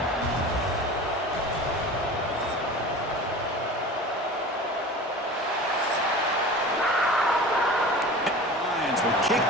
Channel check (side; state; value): both; normal; correlation 0.36